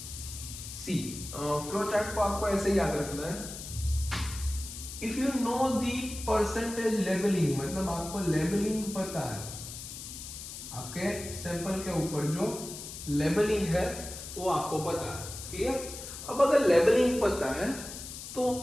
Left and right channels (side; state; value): left; noise; hiss, 10 dB below the sound